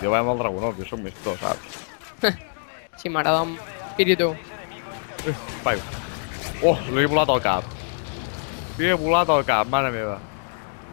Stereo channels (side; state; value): right; silent; digital silence